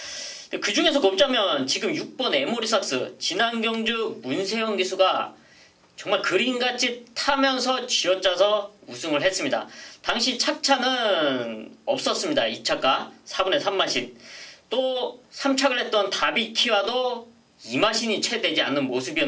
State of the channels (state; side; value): identical; both; correlation 1.00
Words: 그 중에서 꼽자면 지금 6번 에모리삭스 지난 경주 문세영 기수가 정말 그림같이 타면서 쥐어짜서 우승을 했습니다. 당시 착차는 없었습니다. 2차가 4분의 3마신. 또 3착을 했던 다비키와도 2마신이 채 되지 않는